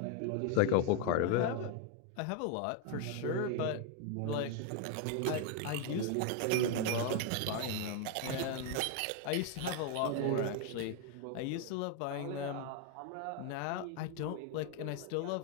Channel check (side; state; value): both; different; correlation 0.01